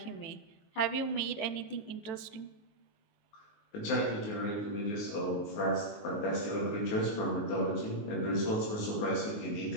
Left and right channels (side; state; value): right; late; 18 ms